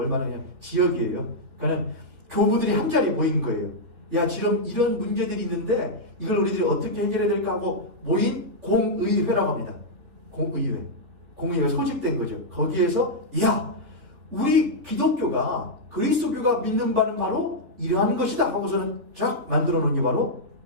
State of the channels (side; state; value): left; late; 3.5 ms